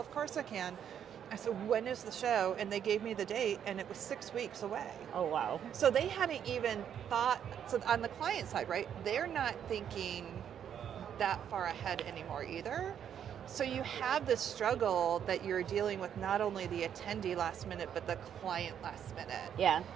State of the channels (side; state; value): left; quieter; 9.0 dB